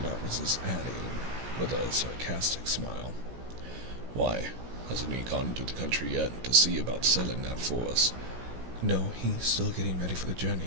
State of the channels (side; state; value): left; late; 16 ms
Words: not resist adding, with a sarcastic smile, "Why, hasn't he gone into the country yet to see about selling that for us?" "No, he's still getting ready for the